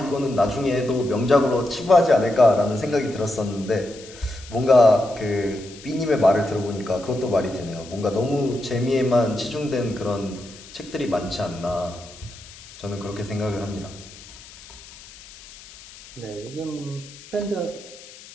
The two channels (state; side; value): noise; left; hiss, 19 dB below the sound